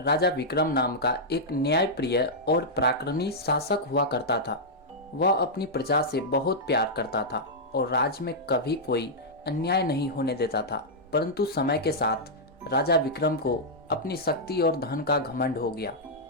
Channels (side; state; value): both; normal; correlation -0.07